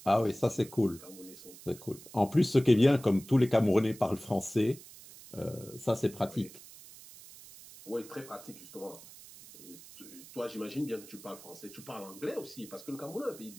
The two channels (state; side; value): noise; right; hiss, 18 dB below the sound